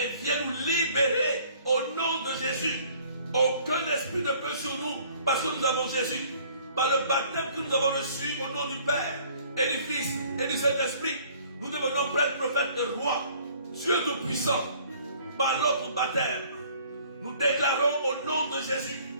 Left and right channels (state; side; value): inverted; both; correlation -0.56